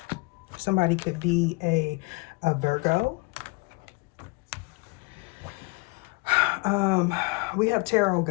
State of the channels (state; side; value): quieter; right; 28.1 dB